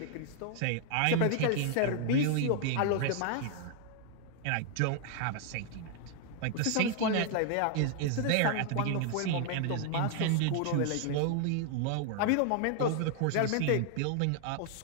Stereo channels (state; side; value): different; both; correlation 0.00